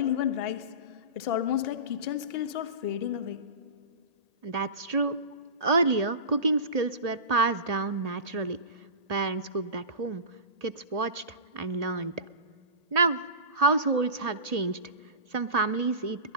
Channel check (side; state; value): left; late; 1.8 ms